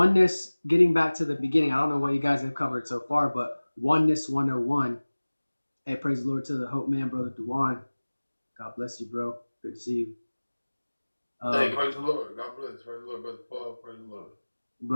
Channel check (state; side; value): inverted; both; correlation -1.00